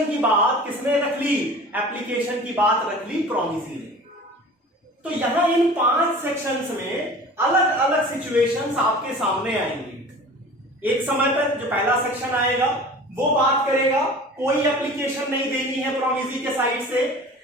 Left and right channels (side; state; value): both; normal; correlation 0.41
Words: की बात किसने रख ली? एप्लीकेशन की बात रख ली प्रॉमिसी ने। तो यहां इन 5 सेक्शंस में अलग अलग सिचुएशंस आपके सामने आएंगी। एक समय पर जो पहला सेक्शन आएगा वो बात करेगा कोई एप्लीकेशन नहीं देनी है प्रॉमिसी के साइड से,